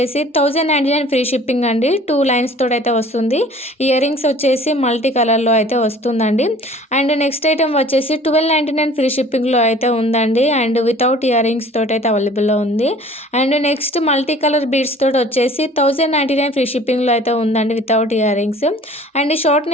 1099 ఫ్రీ షిప్పింగ్ అండి, 2 లైన్స్ తోటి అయితే వస్తుంది. ఇయరింగ్స్ వచ్చేసి మల్టీ కలర్లో అయితే వస్తుందండి. అండ్ నెక్స్ట్ ఐటమ్ వచ్చేసి 1299 ఫ్రీ షిప్పింగ్లో అయితే ఉందండి, అండ్ వితౌట్ ఇయరింగ్స్ తోటి అయితే అవైలబుల్లో ఉంది. And next multi colour beads తోటి వచ్చేసి 1099 ఫ్రీ షిప్పింగ్లో అయితే ఉందండి, without earrings. And short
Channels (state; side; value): normal; both; correlation 0.49